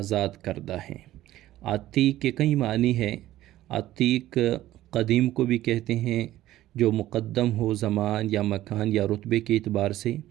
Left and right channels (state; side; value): quieter; left; 14.6 dB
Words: کردہ ہیں۔ عتیق کے کئی معنی ہیں۔ عتیق قدیم کو بھی کہتے ہیں، جو مقدم ہو زمان یا مکان یا رتبے کے اعتبار سے،